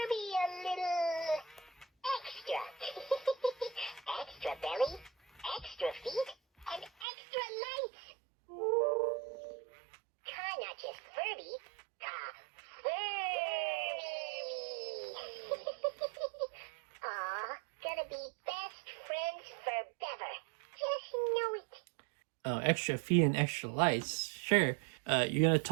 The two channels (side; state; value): left; drops out; at 7.1 s